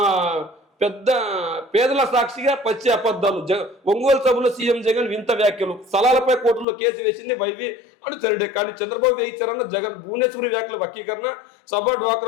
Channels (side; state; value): right; drops out; at 6.7 s